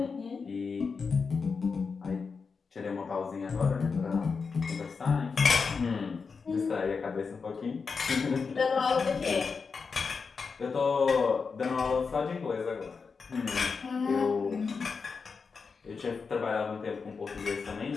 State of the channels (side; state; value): right; quieter; 5.1 dB